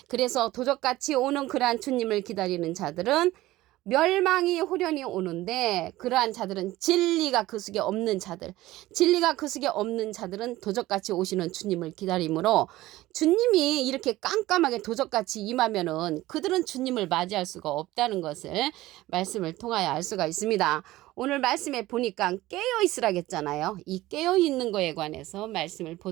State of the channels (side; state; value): left; quieter; 17.0 dB